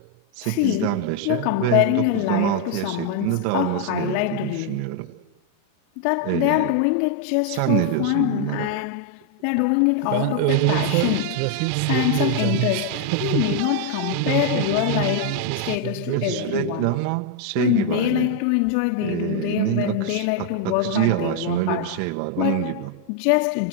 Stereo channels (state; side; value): different; both; correlation 0.00